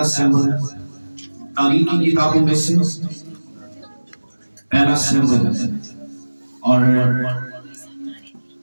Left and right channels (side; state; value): both; inverted; correlation -1.00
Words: सैमुअल तारीख की किताबों में से पहला सैमुअल और